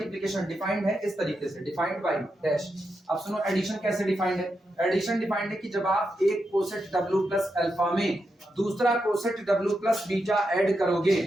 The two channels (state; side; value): normal; both; correlation 0.85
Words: डिफाइंड है इस तरीके से, डिफाइंड बाई डैश। अब सुनो एडिशन कैसे डिफाइंड है। एडिशन डिफाइंड है कि जब आप एक कोसेट W प्लस अल्फा में दूसरा coset W plus beta add करोगे